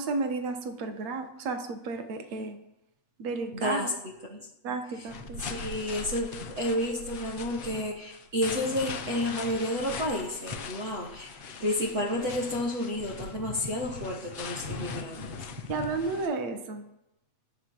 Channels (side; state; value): left; late; 8.2 ms